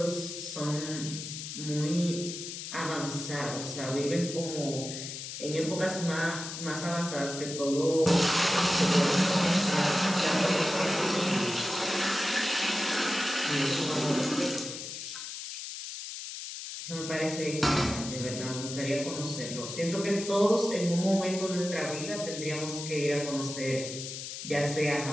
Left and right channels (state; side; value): noise; left; hiss, 8 dB below the sound